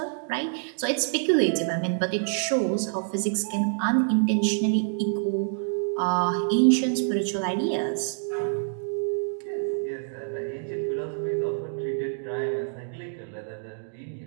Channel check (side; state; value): left; silent; digital silence